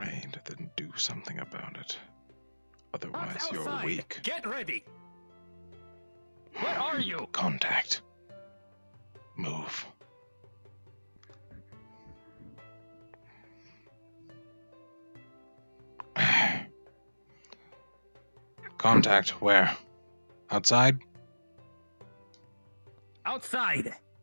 then do something about it. Otherwise, you're Outside. weak. Get ready. Where are you? Contact. Contact where? Outside? Outside!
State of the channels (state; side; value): inverted; both; correlation -1.00